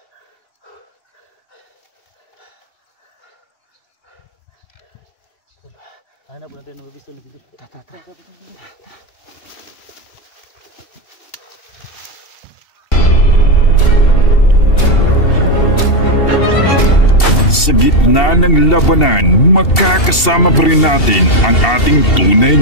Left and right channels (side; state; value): right; late; 2.7 ms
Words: Hanap natin ng mabisto na dito. Tata. Sa gitna ng labanan, makakasama pa rin natin ang ating tunay